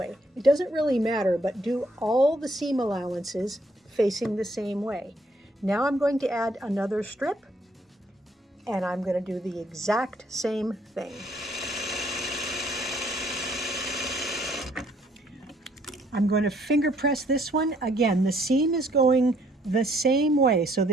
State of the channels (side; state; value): both; normal; correlation 0.66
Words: It doesn't really matter, but do all the seam allowances facing the same way. Now I'm going to add another strip, and I'm going to do the exact same thing. I'm going to finger press this one. Again, the seam is going the same way. So